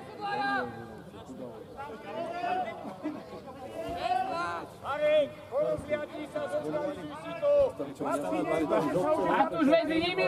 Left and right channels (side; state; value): both; identical; correlation 1.00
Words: Marek, porozliadni sa, zorganizuj si to! Matúš, medzi nimi,